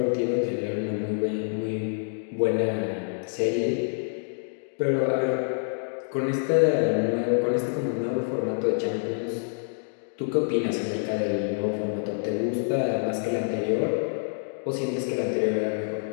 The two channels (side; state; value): right; silent; digital silence